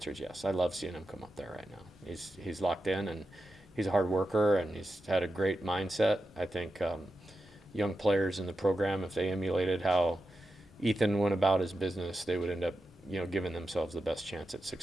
is yes. I love seeing him come up there right now. He's locked in, and he's a hard worker, and he's had a great mindset. I think young players in the program, if they emulated how Ethan went about his business, they would end up, you know, giving themselves the best chance at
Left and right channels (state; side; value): normal; both; correlation 0.90